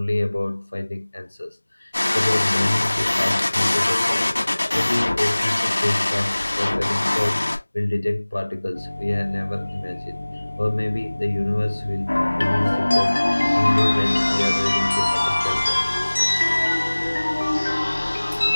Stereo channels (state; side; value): inverted; both; correlation -1.00